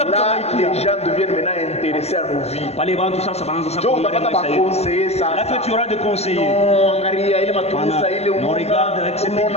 les gens deviennent maintenant intéressés à nos vies. Là que tu auras des conseillers. Non, regarde avec ces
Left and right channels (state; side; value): late; right; 0.30 ms